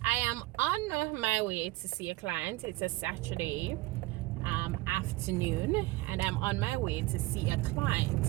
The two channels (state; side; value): quieter; left; 19.6 dB